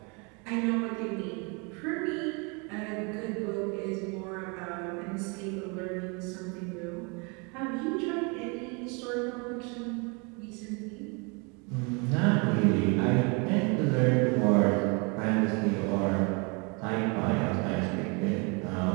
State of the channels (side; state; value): left; quieter; 31.8 dB